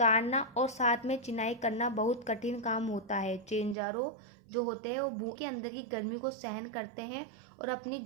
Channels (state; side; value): drops out; left; at 3.8 s